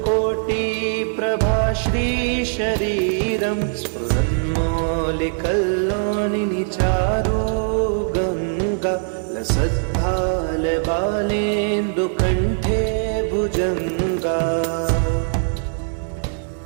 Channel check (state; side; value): silent; left; digital silence